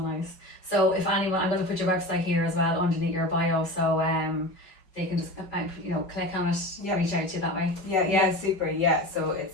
So if anyone, I'm going to put your website here as well underneath your bio, so they can just click on it, reach out to you that way. Super. So it's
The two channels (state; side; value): late; right; 5.4 ms